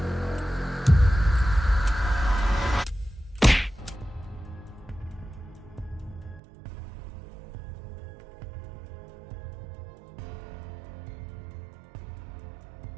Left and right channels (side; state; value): left; drops out; at 6.4 s